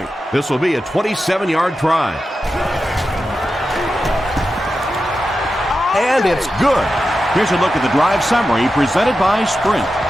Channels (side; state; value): both; normal; correlation 0.91